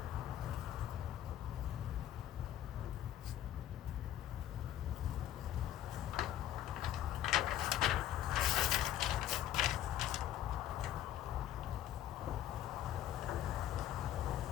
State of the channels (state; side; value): quieter; right; 12.0 dB